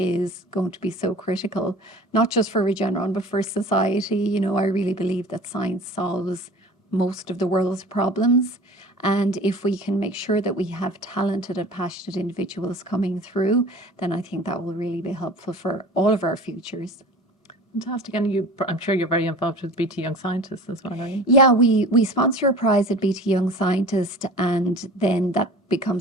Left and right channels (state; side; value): normal; both; correlation 0.41